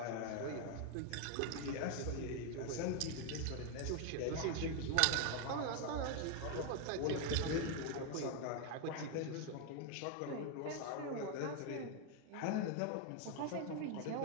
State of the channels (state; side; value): different; both; correlation 0.01